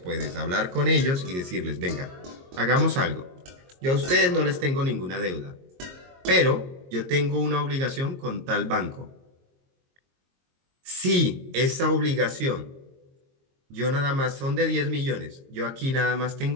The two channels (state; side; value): late; left; 22 ms